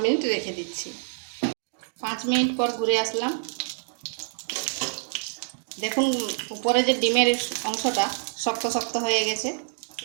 মিনিট রেখে দিচ্ছি। 5 মিনিট পর ঘুরে আসলাম। দেখুন উপরে যে ডিমের অংশটা শক্ত শক্ত হয়ে গেছে।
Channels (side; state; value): left; silent; digital silence